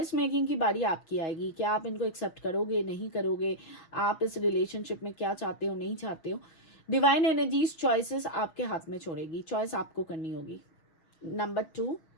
मेकिंग की बारी आपकी आएगी, क्या आप इनको एक्सेप्ट करोगे नहीं करोगे, आप इस रिलेशनशिप में क्या चाहते हो नहीं चाहते हो। डिवाइन एनर्जीज चॉइसेस आपके हाथ में छोड़ेगी, चॉइस आपको करनी होगी। Number 2,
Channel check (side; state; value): right; late; 6.2 ms